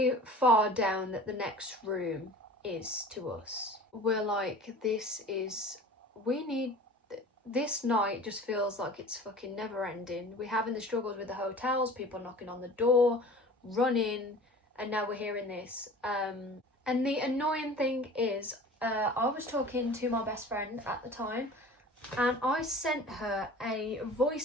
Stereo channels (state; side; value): normal; both; correlation 0.42